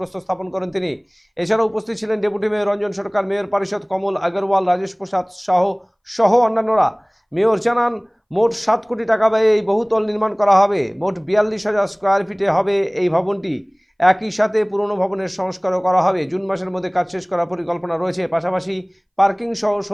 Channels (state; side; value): identical; both; correlation 1.00